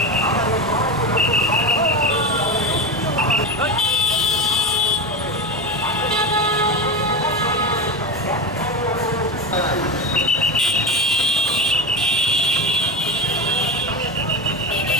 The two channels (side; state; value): both; normal; correlation 0.19